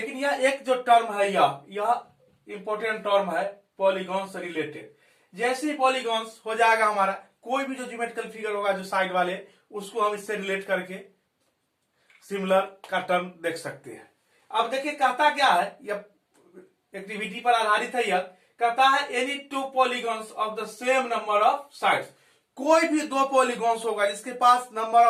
यह एक जो टर्म है यह इंपॉर्टेंट टर्म है पॉलीगॉन से रिलेटेड। जैसे ही पॉलीगॉन्स हो जाएगा हमारा, कोई भी जो ज्योमेट्रिकल फिगर होगा जो साइड वाले, उसको हम इससे रिलेट करके सिमिलर का टर्म देख सकते हैं। अब देखिए कहता क्या है, यह एक्टिविटी पर आधारित है, यह कहता है any to polygons of the same number of sides, कोई भी दो पॉलीगॉन्स होगा जिसके पास नंबर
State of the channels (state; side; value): identical; both; correlation 1.00